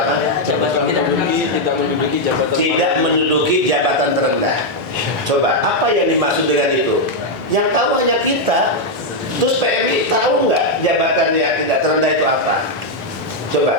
Tidak menduduki jabatan terendah. Coba apa yang dimaksud dengan itu? Yang tahu hanya kita. Terus PMI tahu nggak jabatan yang tidak terendah itu apa?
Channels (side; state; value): both; normal; correlation 0.00